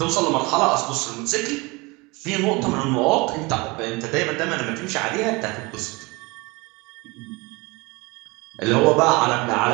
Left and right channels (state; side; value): quieter; left; 25.3 dB